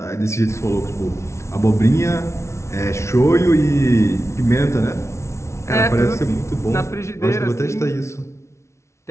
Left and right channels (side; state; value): right; late; 0.13 ms